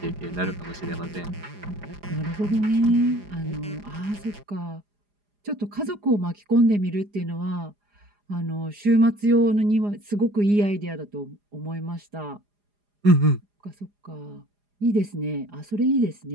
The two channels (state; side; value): late; left; 4.9 ms